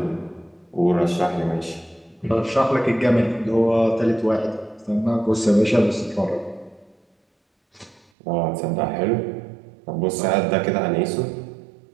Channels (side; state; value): left; drops out; at 8.1 s